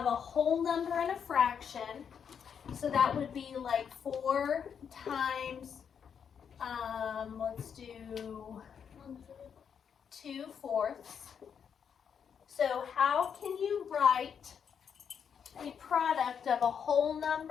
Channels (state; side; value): quieter; right; 7.4 dB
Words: a whole number and a fraction? So that would be like 4 times, let's do 2/4. So how can you write a product of a whole